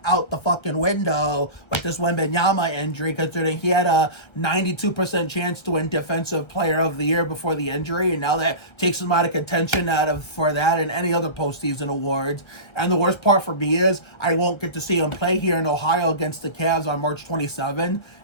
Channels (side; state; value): right; late; 1.3 ms